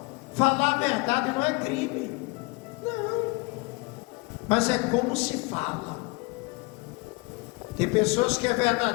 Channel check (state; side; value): quieter; right; 26.7 dB